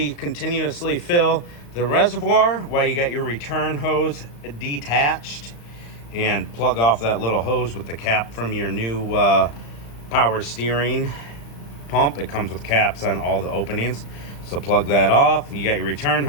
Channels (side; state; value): right; late; 35 ms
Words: continuously fill the reservoir while you got your return hose detached and plug off that little hose with the cap from your new power steering pump. It comes with caps on all the openings. So plug that off. You got your return